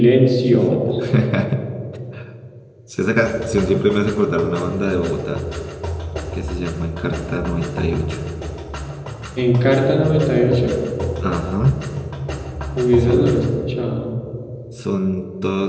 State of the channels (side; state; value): both; identical; correlation 1.00